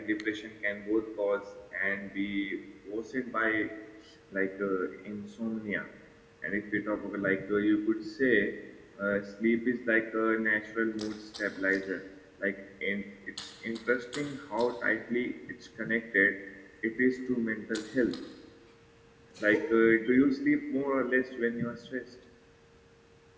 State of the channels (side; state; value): both; identical; correlation 1.00